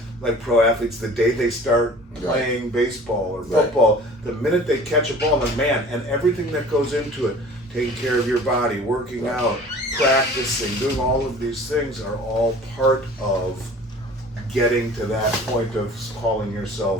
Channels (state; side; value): normal; both; correlation 0.45